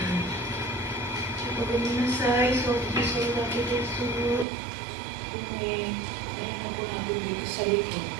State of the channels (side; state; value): left; drops out; at 4.5 s